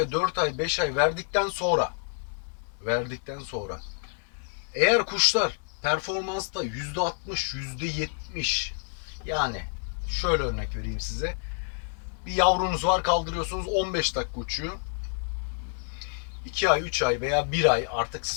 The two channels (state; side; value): silent; right; digital silence